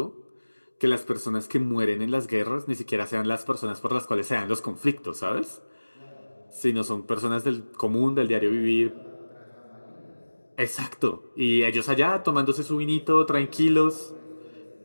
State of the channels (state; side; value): inverted; both; correlation -1.00